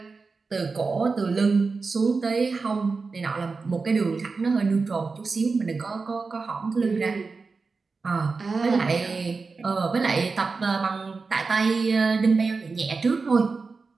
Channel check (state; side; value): quieter; left; 4.3 dB